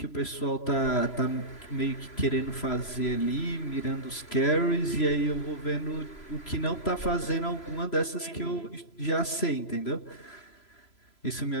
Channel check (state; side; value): late; right; 3.0 ms